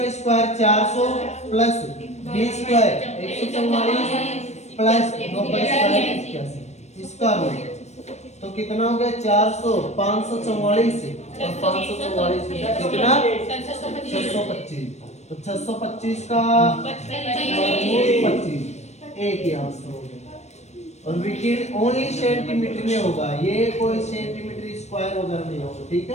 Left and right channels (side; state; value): right; late; 0.32 ms